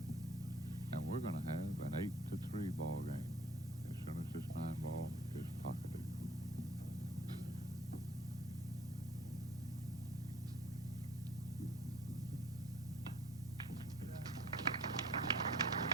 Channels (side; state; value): both; normal; correlation 0.50